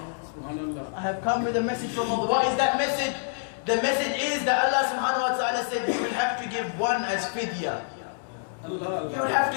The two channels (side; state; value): right; silent; 60 dB below the other